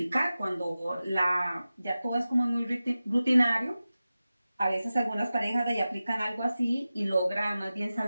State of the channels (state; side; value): inverted; both; correlation -0.95